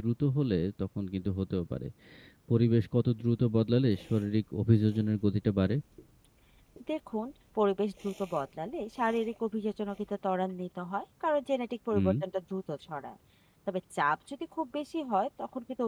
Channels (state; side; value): identical; both; correlation 1.00